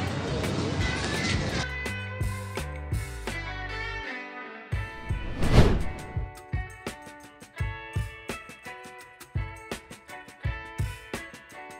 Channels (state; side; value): identical; both; correlation 1.00